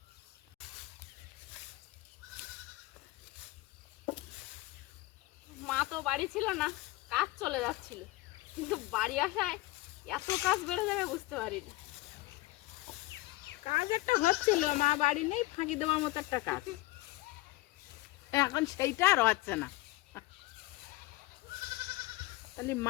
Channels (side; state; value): right; quieter; 19.4 dB